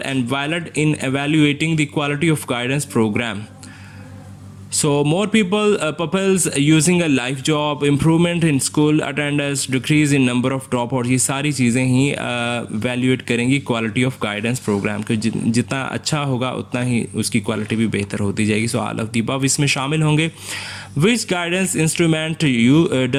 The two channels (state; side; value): identical; both; correlation 1.00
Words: and valid in evaluating the quality of guidance programme, so more peoples using a life job, improvement in school attendance, decrease in number of drop out, ये सारी चीज़ें ही evaluate करेंगी quality of guidance programme के। जितना अच्छा होगा उतना ही उसकी क्वालिटी भी बेहतर होती जाएगी। So all of the above इसमें शामिल होंगे। Which guidance instrument you